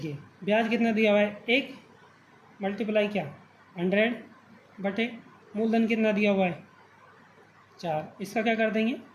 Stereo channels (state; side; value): identical; both; correlation 1.00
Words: ब्याज कितना दिया हुआ है 1 मल्टीप्लाई क्या 100 बटे मूलधन कितना दिया हुआ है 4, इसका क्या कर देंगे